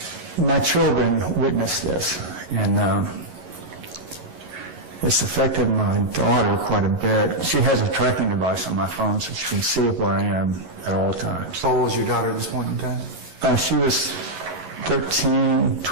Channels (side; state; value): left; late; 11 ms